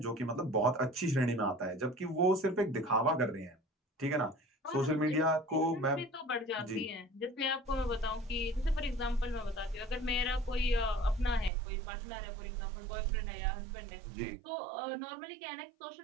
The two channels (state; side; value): drops out; left; at 11.5 s